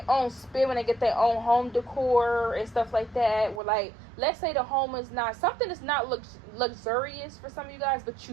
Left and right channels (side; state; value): left; drops out; at 3.6 s